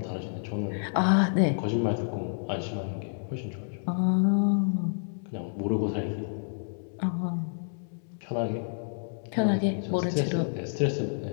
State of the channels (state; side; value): silent; right; digital silence